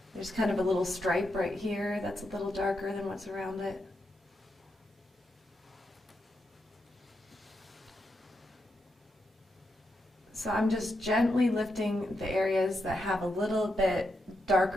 There's kind of a little stripe right here that's a little darker than what's around it. So I'm just gently lifting the areas that have a little bit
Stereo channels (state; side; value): normal; both; correlation 0.84